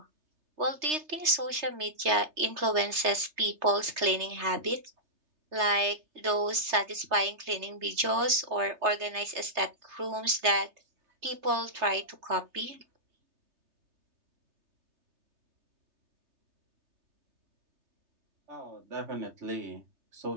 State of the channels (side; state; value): left; late; 3.3 ms